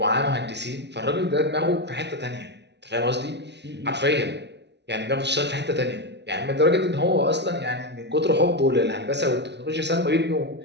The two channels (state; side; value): late; left; 0.50 ms